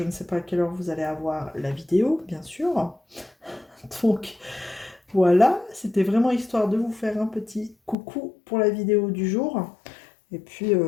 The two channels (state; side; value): drops out; right; at 8.0 s